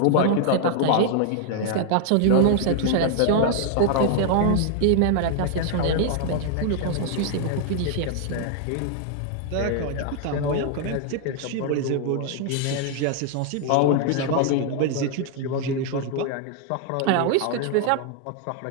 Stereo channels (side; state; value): both; different; correlation 0.00